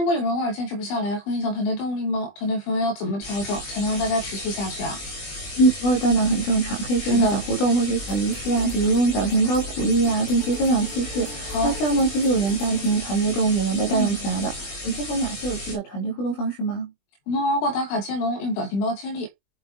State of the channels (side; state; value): right; late; 20 ms